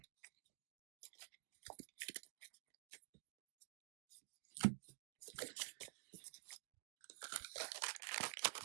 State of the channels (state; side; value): silent; left; digital silence